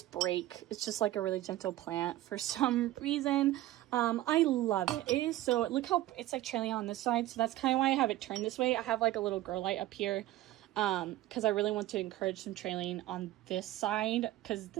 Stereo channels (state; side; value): quieter; left; 15.2 dB